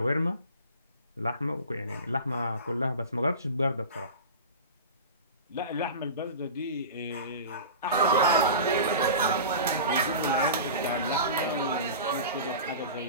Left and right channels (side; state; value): both; inverted; correlation -0.33